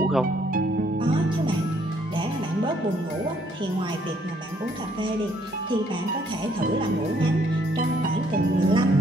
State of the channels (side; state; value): both; normal; correlation 0.66